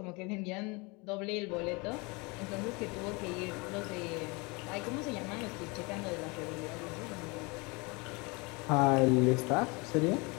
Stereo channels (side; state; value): right; quieter; 27.8 dB